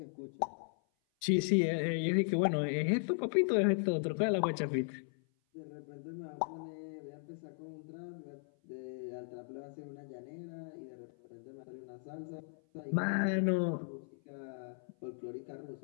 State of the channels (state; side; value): silent; right; 53 dB below the other